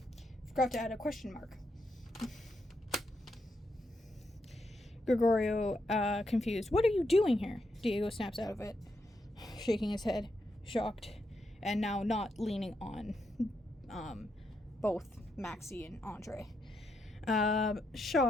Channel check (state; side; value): normal; both; correlation 0.81